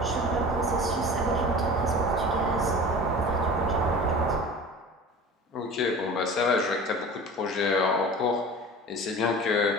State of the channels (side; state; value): both; normal; correlation 0.38